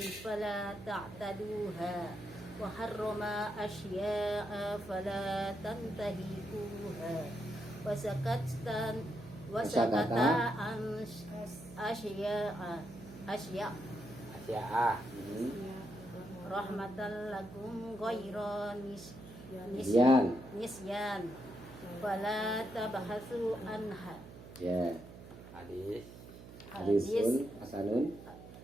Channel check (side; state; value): right; noise; hum, 15 dB below the sound